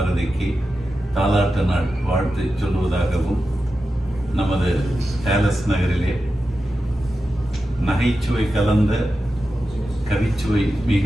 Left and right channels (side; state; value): both; normal; correlation 0.91